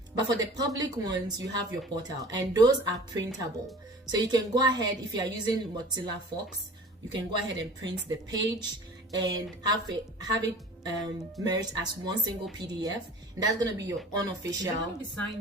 but for the public ones, you have your portal, and those are printable. So you can go ahead, if you are using Mozilla Fox, you can go ahead and print the page and have it merged as one single PDF, and that's going to be your unofficial. Is it going to be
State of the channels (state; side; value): normal; both; correlation 0.43